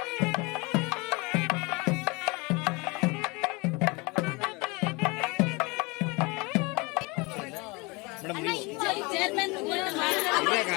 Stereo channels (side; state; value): right; quieter; 26.7 dB